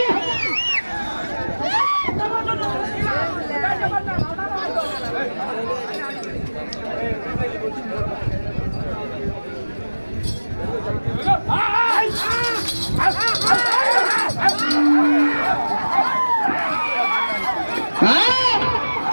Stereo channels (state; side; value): inverted; both; correlation -1.00